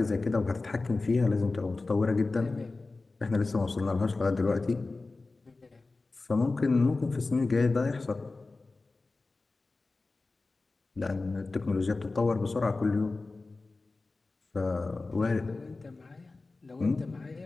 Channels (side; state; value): right; quieter; 3.5 dB